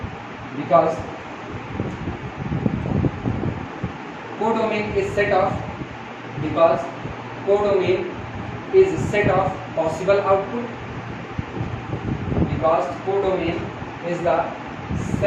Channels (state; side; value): identical; both; correlation 1.00